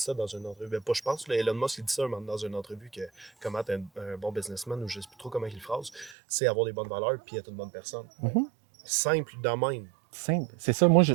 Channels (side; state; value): left; drops out; at 6.2 s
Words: ça dans une entrevue. Ben, pas je pense, là, Elon Musk il dit ça dans une entrevue que comment être un bon businessman, ou je sais plus trop comment il le phrase, c'est avoir des bonnes valeurs puis être une bonne personne. Mhm. Simple de même. Simple. C'est ça, moi, je